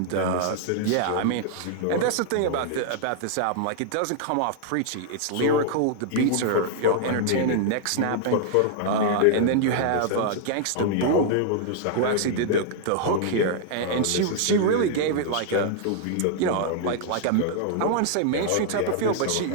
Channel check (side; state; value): both; different; correlation 0.00